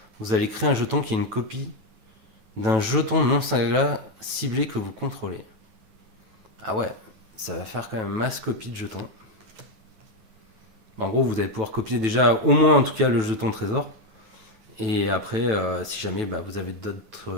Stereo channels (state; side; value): late; left; 9.2 ms